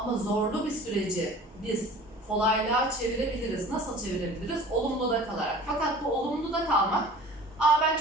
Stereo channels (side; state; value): both; normal; correlation 0.43